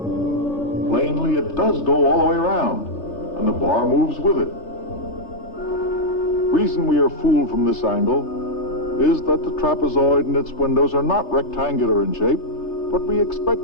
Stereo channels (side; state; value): right; late; 3.3 ms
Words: Plainly, it does go all the way around, and the bar moves with it. Reason we are fooled from this angle is that the trapezoid and its windows are not rectangular in shape, but we